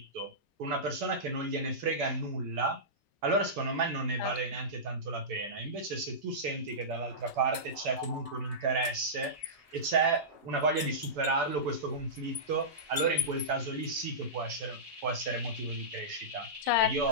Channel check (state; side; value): normal; both; correlation -0.16